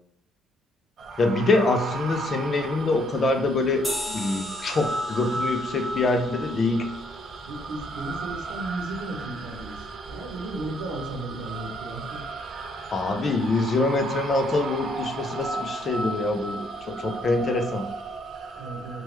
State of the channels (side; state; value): both; normal; correlation 0.69